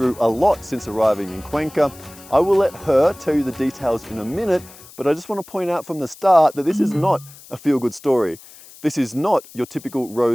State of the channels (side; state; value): left; noise; hiss, 21 dB below the sound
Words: a lot since arriving in Cuenca. I will let her tell you the details in a minute, but I just want to point out from the start that this is not a feel-good story. This is not your typical